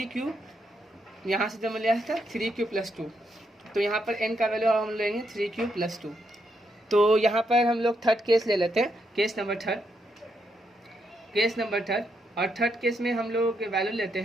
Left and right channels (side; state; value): both; normal; correlation 0.79